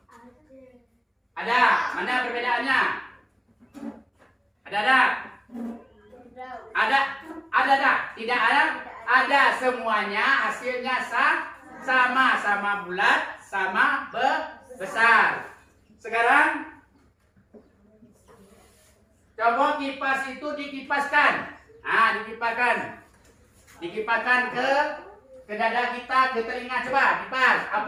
Ada. Mana perbedaannya? Ada enggak? Ada. Ada enggak? Tidak ada? Ada, semuanya hasilnya sama bulat, sama besar. Sekarang coba kipas itu dikipaskan. Nah, dikipaskan ke dada kita, ke telinga. Coba kipas.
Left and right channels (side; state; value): both; identical; correlation 1.00